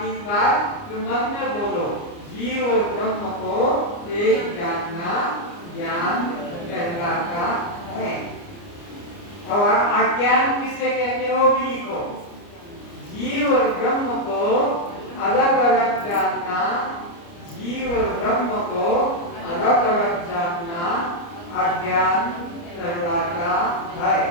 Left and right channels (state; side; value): late; right; 29 ms